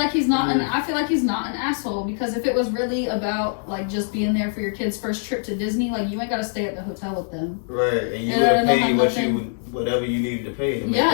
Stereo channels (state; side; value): silent; right; digital silence